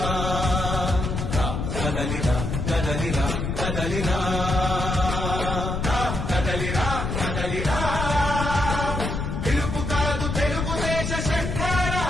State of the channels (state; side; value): noise; left; rumble, 2 dB below the sound